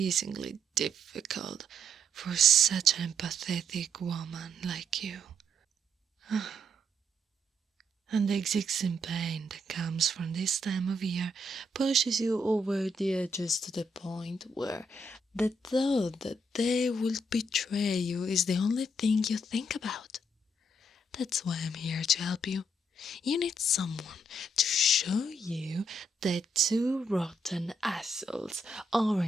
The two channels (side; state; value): both; normal; correlation 0.74